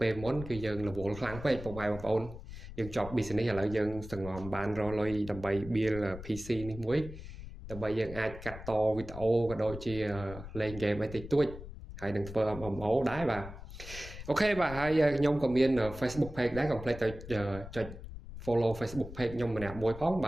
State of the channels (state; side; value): noise; left; rumble, 12 dB below the sound